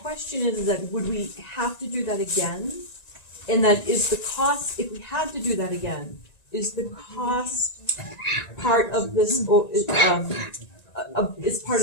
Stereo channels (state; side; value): late; right; 1.9 ms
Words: is that would we have to do that again? And that is the cost, if we had to do that again, is the cost part of this, is part